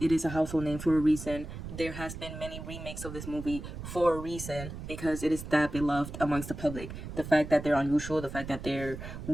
It is a household name for a reason. There has been many remakes of this movie for a reason because it is that beloved amongst the public. The fact that they're unusual, the fact that they're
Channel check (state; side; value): noise; right; rumble, 10 dB below the sound